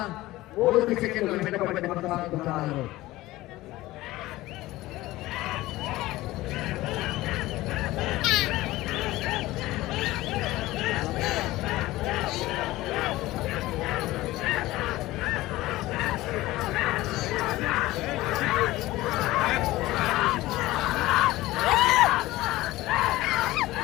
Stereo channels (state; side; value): quieter; right; 17.8 dB